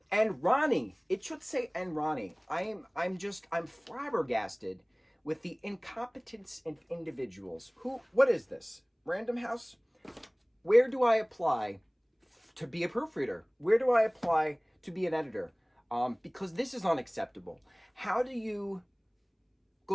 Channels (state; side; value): identical; both; correlation 1.00